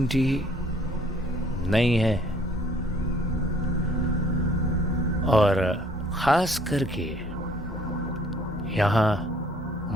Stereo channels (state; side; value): normal; both; correlation 0.59